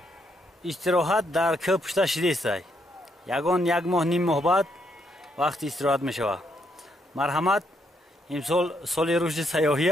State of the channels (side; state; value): both; normal; correlation 0.75